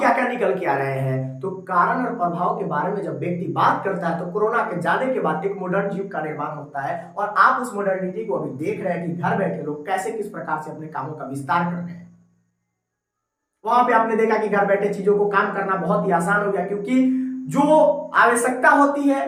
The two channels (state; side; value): identical; both; correlation 1.00